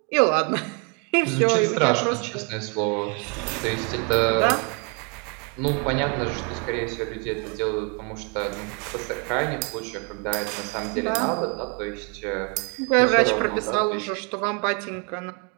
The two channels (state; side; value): quieter; left; 34.9 dB